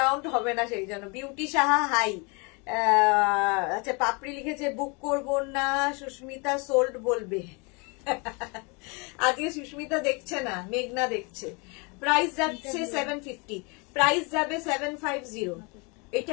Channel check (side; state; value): right; quieter; 30.7 dB